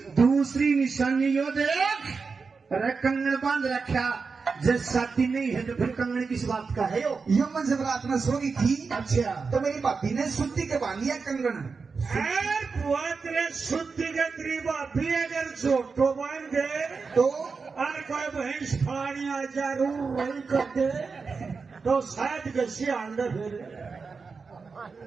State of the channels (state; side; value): quieter; left; 4.8 dB